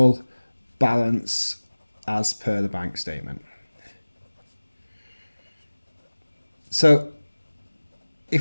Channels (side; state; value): both; inverted; correlation -1.00